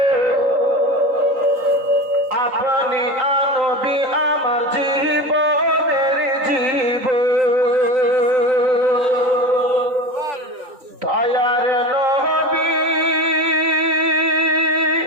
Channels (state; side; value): late; left; 3.9 ms